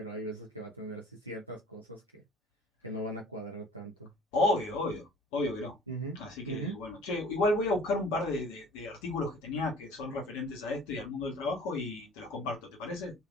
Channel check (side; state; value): both; normal; correlation 0.48